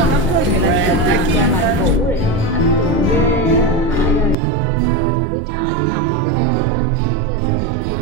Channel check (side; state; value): left; drops out; at 4.4 s